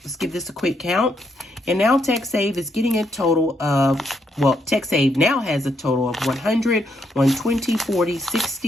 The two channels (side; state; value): both; normal; correlation 0.77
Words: let's give this a quick count. And now TechSave is getting a total of, well, TechSave now has a total of 100, 120, 40,